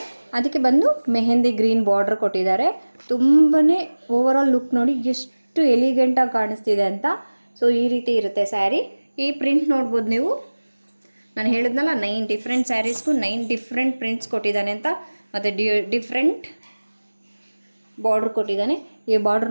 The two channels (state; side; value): inverted; both; correlation -1.00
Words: ಅದಕ್ಕೆ ಬಂದು ಮೆಹಂದಿ ಗ್ರೀನ್ ಬಾರ್ಡ್ರ್ ಕೊಟ್ಟಿದ್ದಾರೆ. ತುಂಬಾ ಓವರ್ ಆಲ್ ಲುಕ್ ನೋಡಿ ಎಷ್ಟು ಎಲಿಗೆಂಟಾಗಿ ಕಾಣಿಸ್ತಿದೆ ಅಂತ. ಸೊ ಈ ರೀತಿ ಇರುತ್ತೆ ಸ್ಯಾರಿ. ಈ ಪ್ರಿಂಟ್ ನೋಡ್ಬೋದು ನೀವು, ನಾನು ಹೇಳಿದ್ನಲ್ಲ 9 ಡಿಫ್ರೆಂಟ್ ಸ್ಯಾರೀಸ್ಗೂ 9 ಡಿಫ್ರೆಂಟ್ ಪ್ರಿಂಟ್ಸ್ ಕೊಟ್ಟಿದ್ದಾನೆ ಅಂತ. ಮತ್ತು ಡಿಫ್ರೆಂಟ್ ಬಾರ್ಡ್ರ್ ಕೊಟ್ಟಿದ್ದಾನೆ. ಈ ಬಾರ್ಡ್ರ್